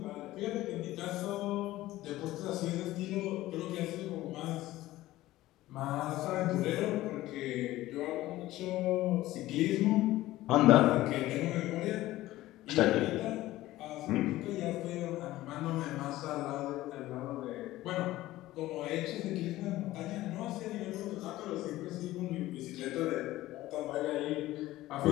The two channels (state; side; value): quieter; right; 16.4 dB